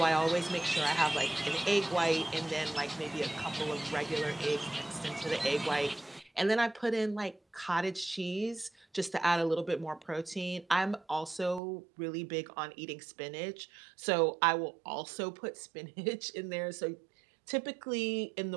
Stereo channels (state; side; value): drops out; left; at 11.6 s